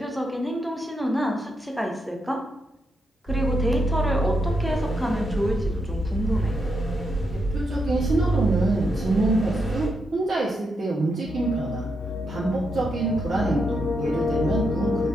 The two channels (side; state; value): both; normal; correlation 0.81